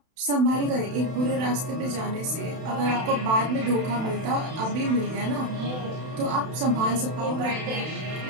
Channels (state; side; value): late; left; 32 ms